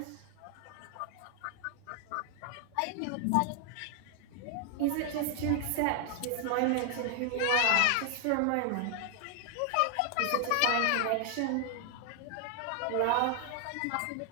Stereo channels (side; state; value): both; different; correlation 0.00